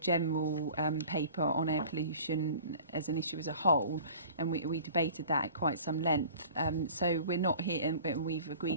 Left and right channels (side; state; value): both; inverted; correlation -0.44